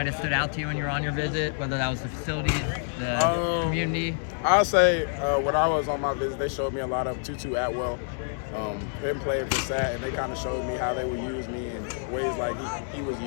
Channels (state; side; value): silent; right; digital silence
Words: have stood out to you when you were on your visit, whether that was the facilities, the community? I'll say when I was on my visit, they showed me a lot of Tutu Atwell. Him playing for SAT, and they kind of showed me how they would use me in ways like he was